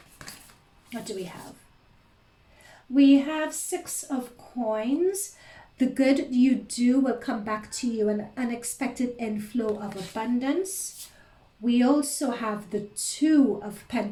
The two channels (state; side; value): identical; both; correlation 1.00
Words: What do we have? We have Six of Coins. The good you do will come back to you, an unexpected inflow of abundance. We also have the Two of